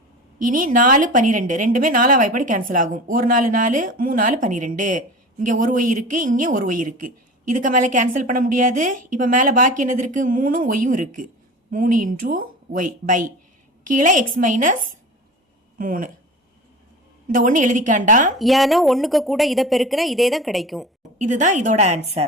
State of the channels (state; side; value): normal; both; correlation 0.34